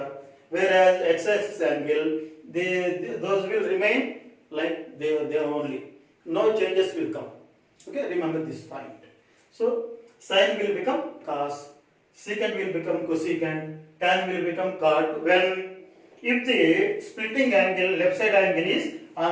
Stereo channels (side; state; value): both; identical; correlation 1.00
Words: whereas x-axis angle, those will remain like they are only. No changes will come. Okay, remember this point. So sine will become cos, secant will become cosecant, tan will become cot when if the splitting angle, left side angle is